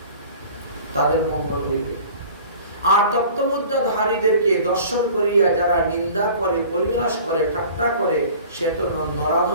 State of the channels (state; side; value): inverted; both; correlation -0.45